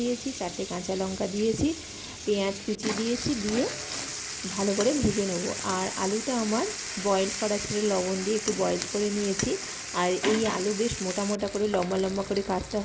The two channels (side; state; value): both; identical; correlation 1.00